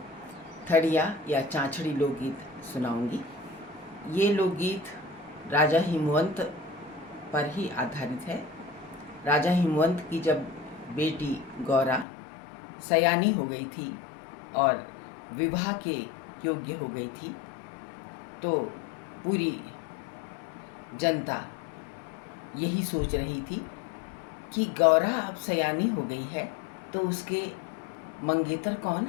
थड़िया या चाँचड़ी लोकगीत सुनाऊंगी। ये लोकगीत राजा हिमवंत पर ही आधारित है। राजा हिमवंत की जब बेटी गौरा सयानी हो गई थी और विवाह के योग्य हो गई थी, तो पूरी जनता यही सोच रही थी कि गौरा अब सयानी हो गई है तो उसके मंगेतर कौन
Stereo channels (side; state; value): right; drops out; at 12.1 s